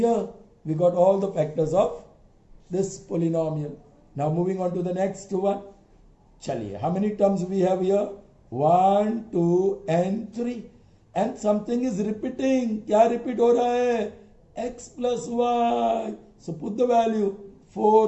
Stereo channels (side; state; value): both; identical; correlation 1.00